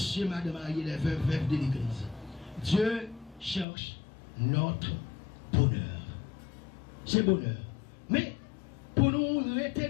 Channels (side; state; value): right; drops out; at 3.7 s